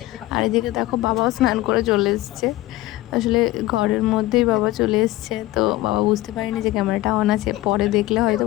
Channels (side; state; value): right; quieter; 17.4 dB